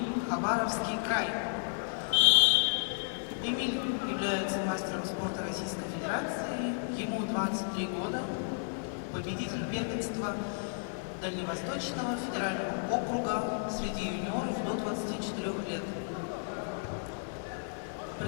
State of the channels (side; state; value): right; silent; digital silence